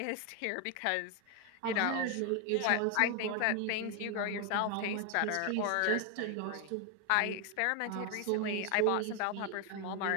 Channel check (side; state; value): both; different; correlation 0.01